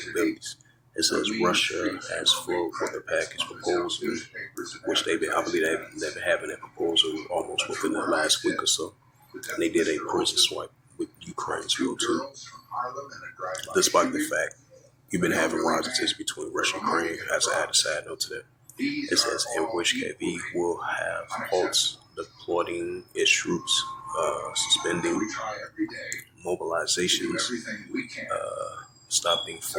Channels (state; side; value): identical; both; correlation 1.00